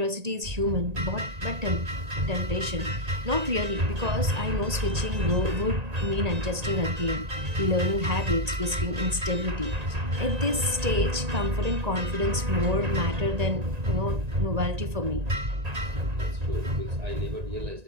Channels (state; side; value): late; left; 1.9 ms